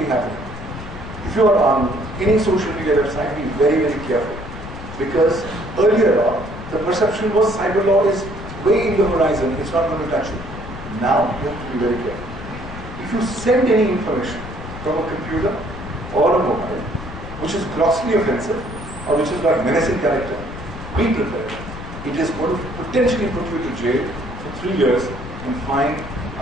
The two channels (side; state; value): left; noise; rumble, 11 dB below the sound